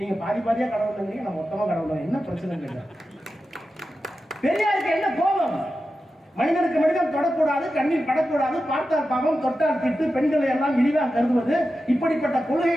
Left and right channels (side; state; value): both; normal; correlation 0.91